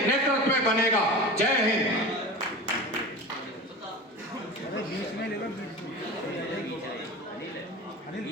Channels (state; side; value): normal; both; correlation 0.32